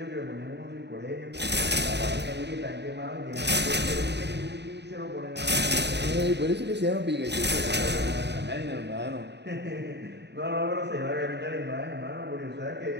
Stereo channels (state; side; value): late; left; 0.50 ms